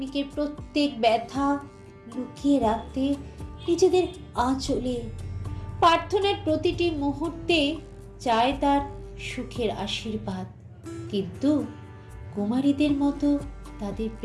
প্রত্যেক ব্যথা লুকিয়ে রাখতে নিজেদের আঁচলে। প্রার্থনার প্রতিটি মুহূর্তে চায় তার সুখের আশীর্বাদ। কিন্তু কুমারীদের মতো তাদের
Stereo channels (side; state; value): both; identical; correlation 1.00